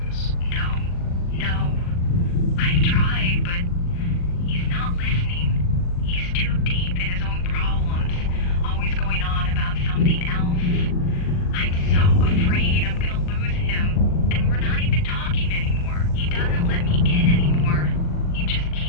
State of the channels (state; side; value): late; right; 40 ms